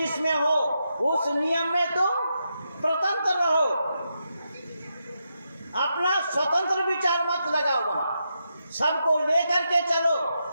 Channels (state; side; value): inverted; both; correlation -0.84